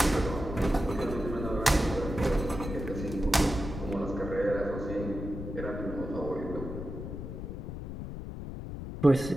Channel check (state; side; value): noise; left; rumble, 7 dB below the sound